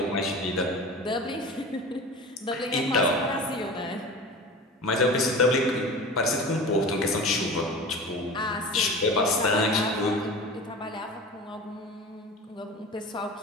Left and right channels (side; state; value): both; normal; correlation 0.34